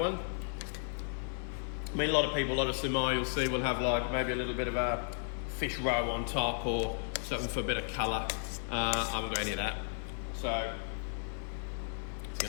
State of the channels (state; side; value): silent; right; 55 dB below the other